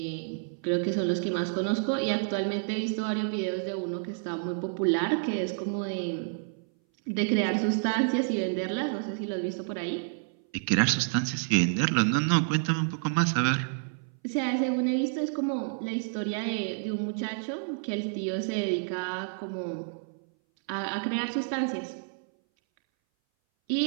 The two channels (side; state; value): left; silent; 58 dB below the other